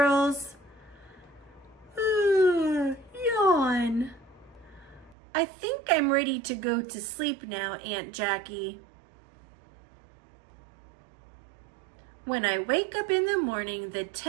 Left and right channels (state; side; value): drops out; left; at 5.2 s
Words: Yawn. I think I'm ready to go to sleep now, Aunt Jackie. When I wake up in the morning, the